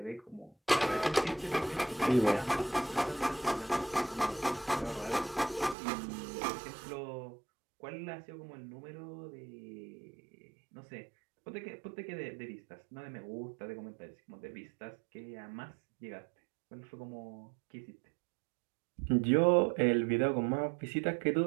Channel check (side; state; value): left; drops out; at 5.8 s